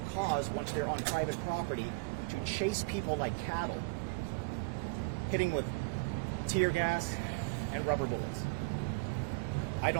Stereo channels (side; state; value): left; quieter; 27.1 dB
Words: cause once they're on private property to chase people like cattle, hitting with tear gas and rubber bullets. I